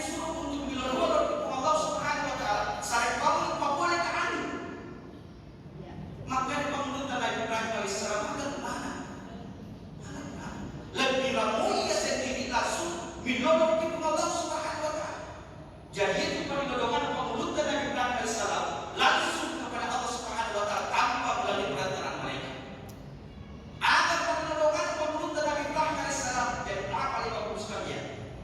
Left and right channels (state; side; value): identical; both; correlation 1.00